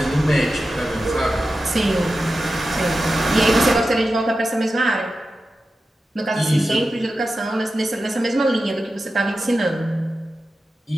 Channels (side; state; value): both; normal; correlation 0.92